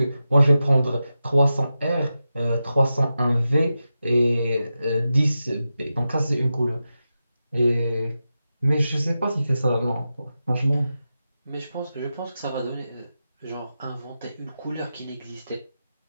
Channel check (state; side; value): inverted; both; correlation -0.91